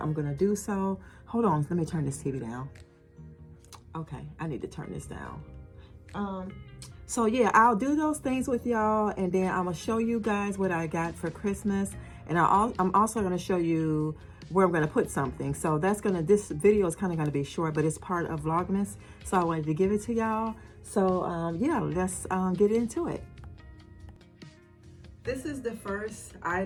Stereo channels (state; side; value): identical; both; correlation 1.00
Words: going to do so. Hold on, let me turn this TV down. Okay, I need to turn this down. So yeah, I'll do those things with y'all, and then I'm gonna show you guys what I got for Christmas, and I'm also gonna show you where I'm gonna put something. So this video is kind of gonna be short, but it's part of Vlogmas, so I wanted to give it to y'all. So yeah, let's get into it. This is the first